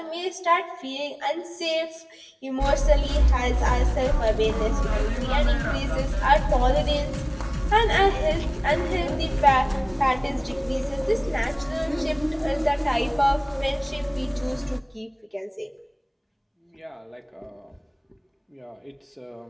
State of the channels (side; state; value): both; identical; correlation 1.00